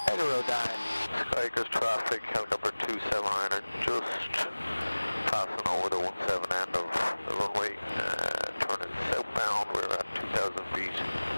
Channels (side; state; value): both; inverted; correlation -1.00